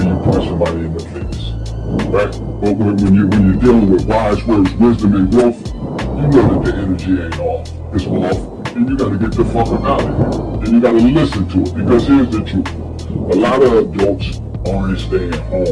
you punch somebody in the face. Right? But when you're dealing with wise words, wisdom, and growth, you know that the energy ain't off. It's off, and you gotta get the fuck out of here. And you gotta listen to it, because here's the truth. A lot of adults aren't staying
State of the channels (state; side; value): identical; both; correlation 1.00